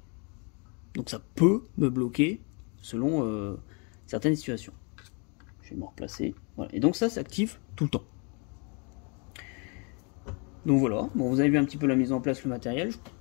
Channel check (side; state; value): right; quieter; 34.6 dB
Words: Donc ça peut me bloquer selon certaines situations. Je vais me replacer. Voilà. Et donc ça s'active tout le temps. Donc voilà, bon, vous avez vu un petit peu la mise en place, le matériel.